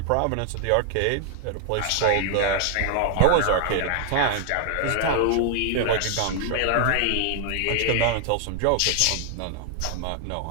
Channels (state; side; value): different; both; correlation 0.00